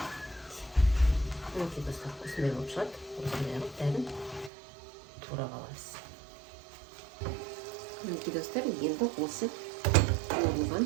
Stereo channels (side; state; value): left; drops out; at 4.5 s